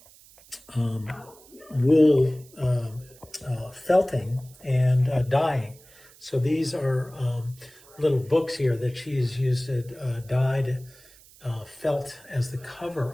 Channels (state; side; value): noise; right; hiss, 24 dB below the sound